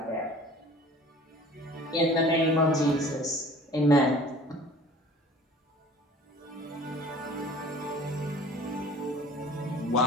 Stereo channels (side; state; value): both; normal; correlation 0.47